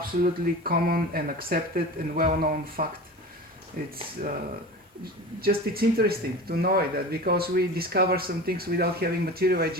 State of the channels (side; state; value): both; normal; correlation 0.33